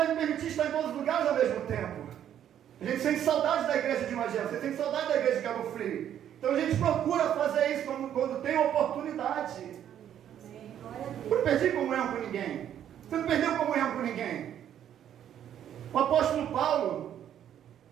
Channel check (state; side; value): quieter; left; 10.2 dB